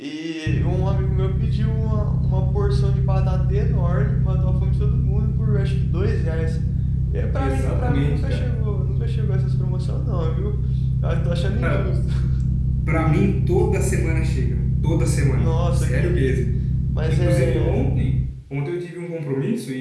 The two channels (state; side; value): identical; both; correlation 1.00